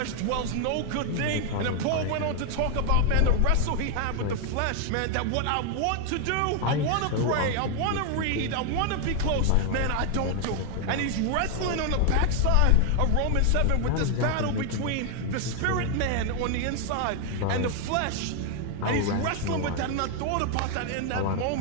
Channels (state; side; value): different; both; correlation 0.01